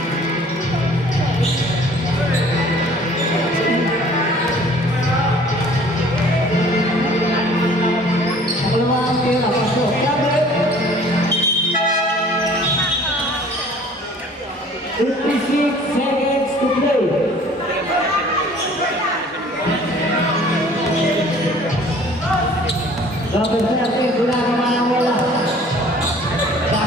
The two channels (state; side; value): normal; both; correlation 0.52